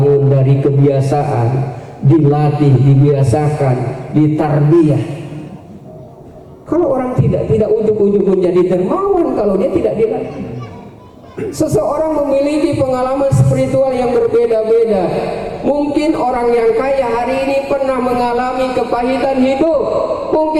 dari kebiasaan, dilatih, dibiasakan, ditarbiyah. Kalau orang tidak ujug-ujug menjadi dermawan kalau dia tidak dilatih. Seseorang memiliki pengalaman spiritual yang berbeda-beda. Mungkin orang yang kaya hari ini pernah mengalami kepahitan hidup.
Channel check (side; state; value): both; identical; correlation 1.00